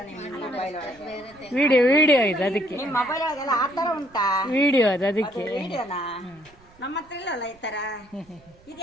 ವಿಡಿಯೋ ಇದು, ಅದಕ್ಕೆ ವಿಡಿಯೋ ಅದು, ಅದಕ್ಕೆ ನಮ್ಮ ಹತ್ರ ಇಲ್ಲಲ್ಲ ಈ ತರ.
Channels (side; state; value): right; noise; rumble, 28 dB below the sound